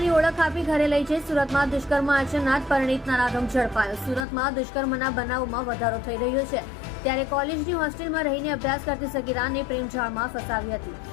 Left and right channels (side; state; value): right; drops out; at 4.2 s